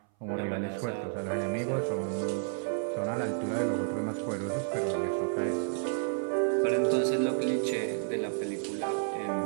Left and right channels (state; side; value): silent; left; 57 dB below the other